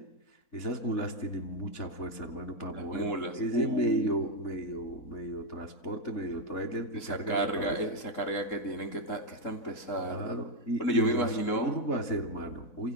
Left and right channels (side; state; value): right; late; 4.1 ms